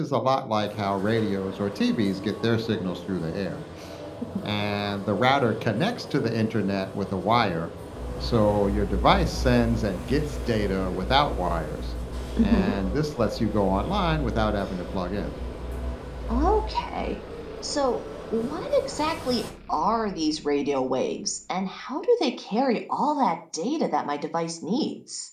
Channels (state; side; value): identical; both; correlation 1.00